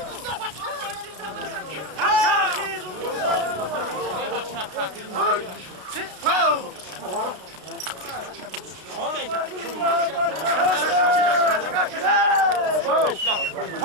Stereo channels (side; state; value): left; late; 32 ms